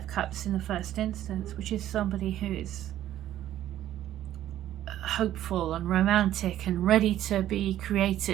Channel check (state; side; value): quieter; left; 12.6 dB